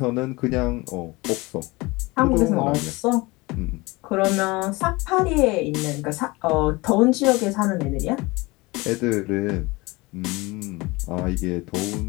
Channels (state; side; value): quieter; right; 23.3 dB